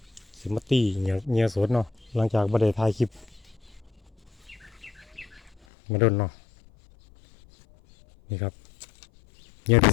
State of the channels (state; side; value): drops out; right; at 5.6 s